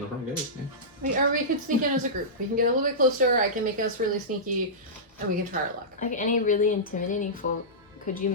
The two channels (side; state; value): both; normal; correlation -0.16